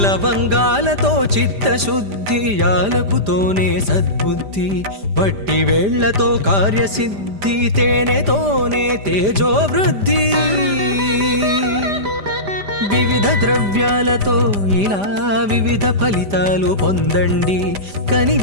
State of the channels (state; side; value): late; left; 5.0 ms